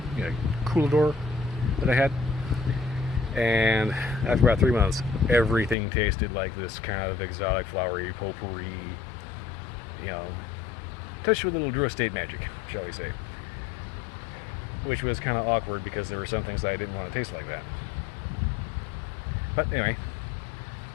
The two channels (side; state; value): right; drops out; at 5.8 s